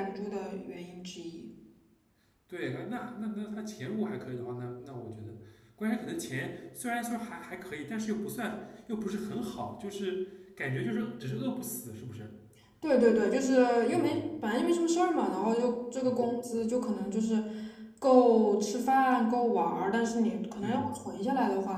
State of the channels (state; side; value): identical; both; correlation 1.00